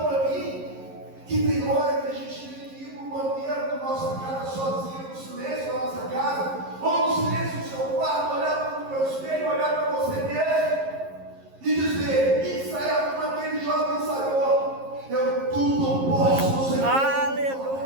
para mim? Que tem hora que a gente tem que ir para o banheiro da nossa casa sozinho, no silêncio da nossa casa, ou no silêncio do seu quarto, olhar para o meu espelho, olhar para você mesmo e dizer, ensaiar como aquele jovem ensaiou: eu tudo posso no Senhor.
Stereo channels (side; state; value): left; late; 11 ms